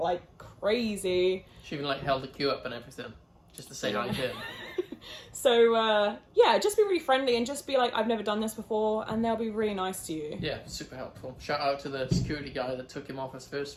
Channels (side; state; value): both; identical; correlation 1.00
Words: crazy. She even like held the queue up and everything, just to say hi to him. So yeah, just be really friendly and just be like, I've never done this before, and they'll be really nice to you. Yeah, super helpful. Shout out to the security guy that took him off us first